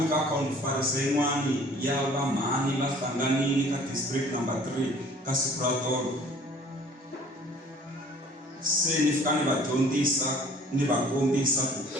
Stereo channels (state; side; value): normal; both; correlation 0.52